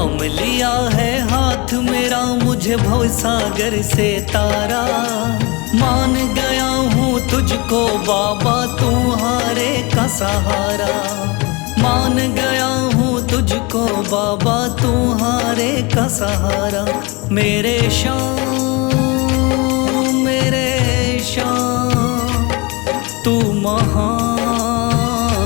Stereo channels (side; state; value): right; quieter; 26.9 dB